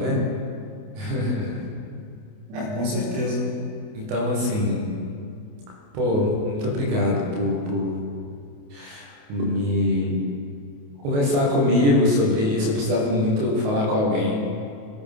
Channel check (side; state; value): left; late; 28 ms